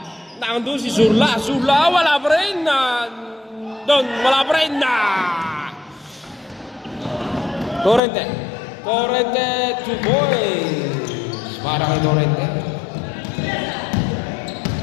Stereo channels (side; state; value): right; drops out; at 8.0 s